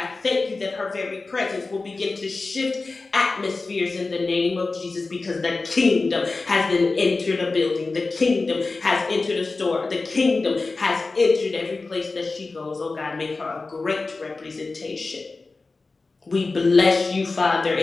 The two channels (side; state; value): right; quieter; 3.7 dB